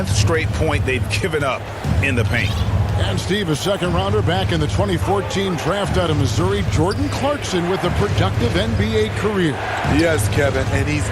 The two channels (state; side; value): identical; both; correlation 1.00